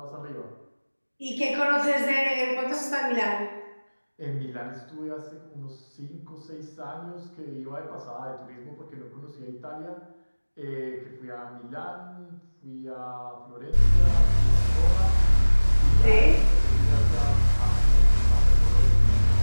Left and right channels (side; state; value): both; inverted; correlation -1.00